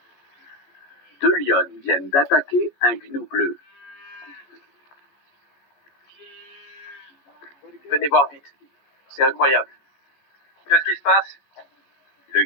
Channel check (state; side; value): late; right; 14 ms